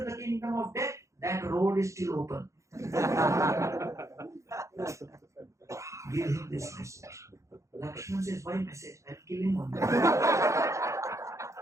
the kingdom of death, that road is still open. Give him this message. Lakshman says, why message? I'll kill him on that.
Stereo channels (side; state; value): left; late; 0.15 ms